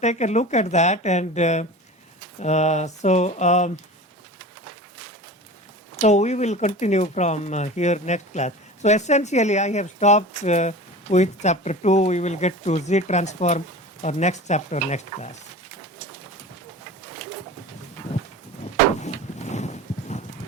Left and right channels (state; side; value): normal; both; correlation 0.35